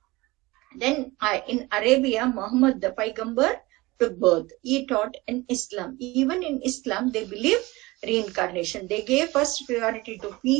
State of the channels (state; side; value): quieter; left; 21.5 dB